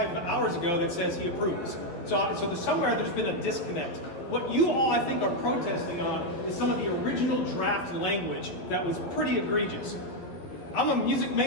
hours ago that says he approves. So somewhere there's been a disconnect. What you all, I think, are protesting on is some of the original draft language that was pretty egregious. I'm a music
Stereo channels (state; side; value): late; right; 11 ms